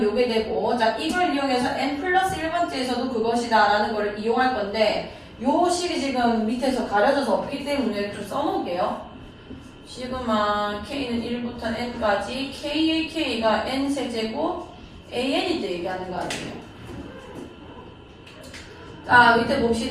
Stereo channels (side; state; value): both; identical; correlation 1.00